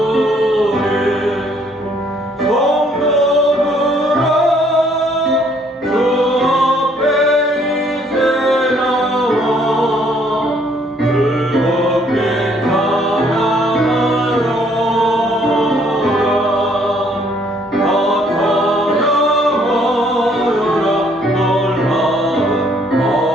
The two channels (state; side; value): normal; both; correlation 0.64